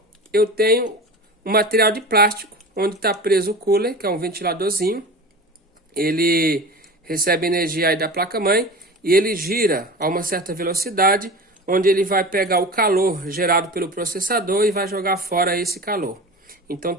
eu tenho um material de plástico, onde está preso o cooler, que é um ventiladorzinho. Ele recebe energia aí da placa-mãe e ele gira a uma certa velocidade, onde ele vai pegar o calor gerado pelo processador e vai jogar fora esse calor. Então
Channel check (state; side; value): normal; both; correlation 0.33